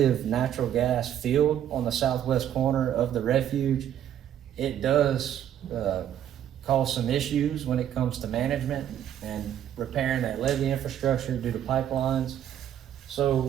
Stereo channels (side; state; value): left; quieter; 10.4 dB